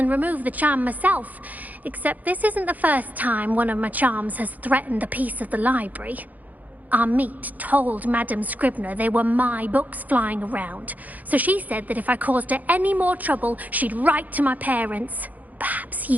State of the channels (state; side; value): late; left; 0.081 ms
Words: remove the charm myself, except this isn't the first time one of my charms has threatened the peace of the library. Amit told Madame Scribner they were my books flying around, so she said that if I caused her any more trouble, she'd write to my parents. Perhaps